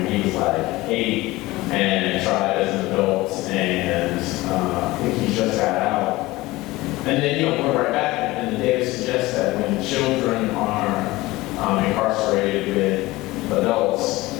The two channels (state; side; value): quieter; right; 19.5 dB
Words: He was like 8 and tried as an adult, and I think he just got out. And then, we're right back, and the data suggests that when children are incarcerated with adults,